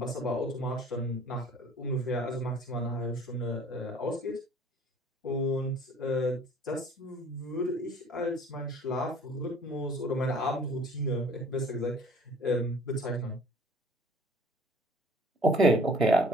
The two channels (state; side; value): normal; both; correlation 0.51